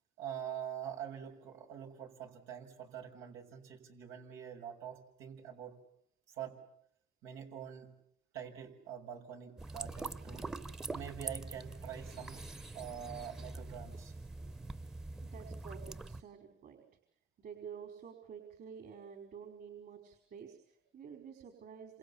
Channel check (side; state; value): left; quieter; 5.6 dB